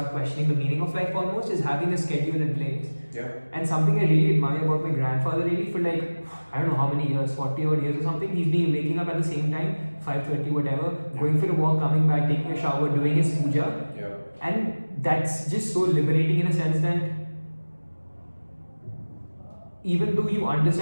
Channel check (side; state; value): both; inverted; correlation -1.00